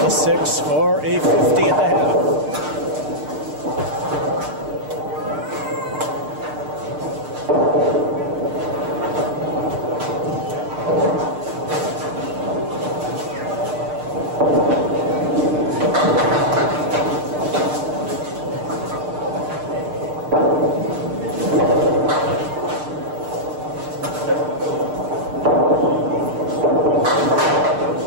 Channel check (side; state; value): left; late; 6.6 ms